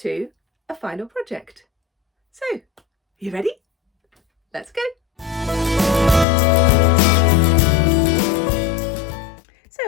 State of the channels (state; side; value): drops out; right; at 6.2 s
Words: a final project. So, you ready? Let's go.